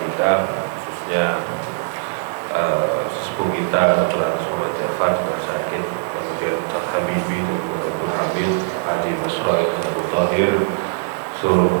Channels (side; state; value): left; silent; digital silence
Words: khususnya sepuh kita Dr. Muhammad Jafar juga sakit, kemudian Ustaz Habibi dan Dr. Hamid, Haji Masroh dan Abu Tahir, seluruh